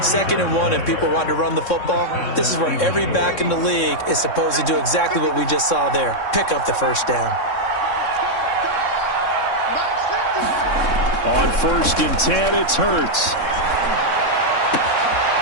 and 1, and people want to run the football. This is where every back in the league is supposed to do exactly what we just saw there. Pick up the first down. On 1st and 10, it's Hurts.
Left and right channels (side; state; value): right; late; 3.6 ms